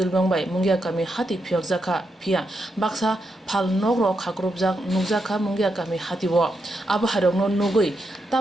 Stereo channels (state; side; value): normal; both; correlation 0.83